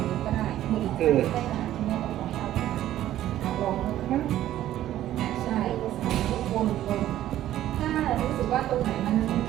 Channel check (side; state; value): left; quieter; 13.0 dB